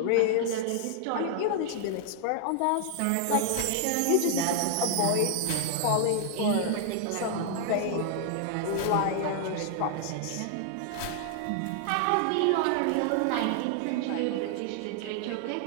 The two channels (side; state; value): both; different; correlation 0.00